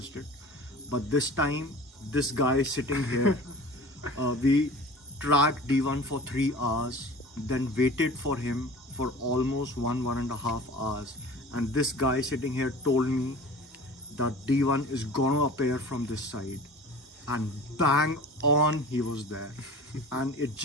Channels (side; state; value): both; normal; correlation 0.40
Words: it, but this time this guy sitting here, we tracked D1 for 3 hours, then waited for him for almost 1.5 hours, and this guy sitting here told me that D1 is gonna appear from this side, and bang on he was there. And it